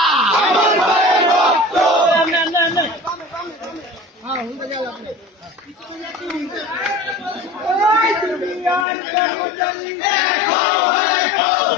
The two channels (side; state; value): right; drops out; at 8.8 s